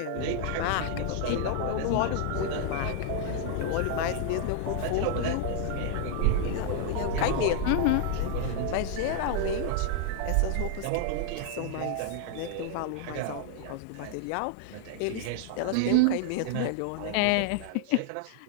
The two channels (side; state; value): both; different; correlation 0.00